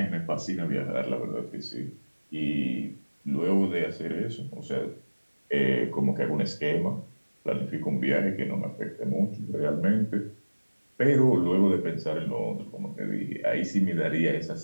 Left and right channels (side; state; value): both; inverted; correlation -1.00